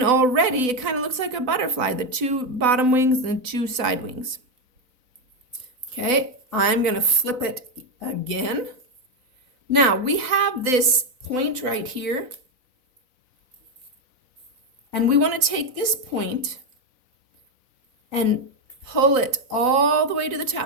already it kind of looks like a butterfly, the 2 bottom wings and the 2 side wings. Okay, I'm going to flip it again. Now we have this point right here. And we want to take this point and pull it all the way to the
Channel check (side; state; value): left; late; 4.0 ms